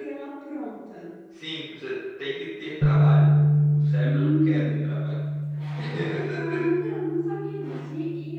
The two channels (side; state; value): both; identical; correlation 1.00